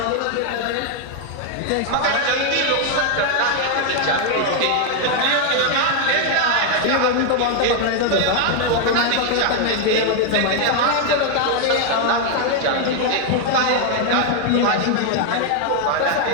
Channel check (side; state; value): both; different; correlation 0.00